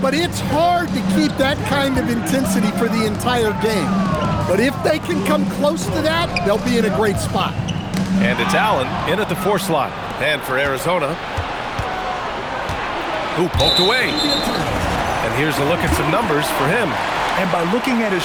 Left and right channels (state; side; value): identical; both; correlation 1.00